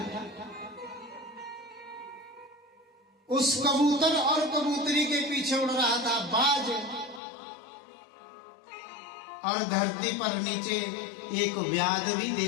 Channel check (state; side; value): drops out; right; at 7.2 s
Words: उस कबूतर और कबूतरी के पीछे उड़ रहा था बाज, और धरती पर नीचे एक व्याध भी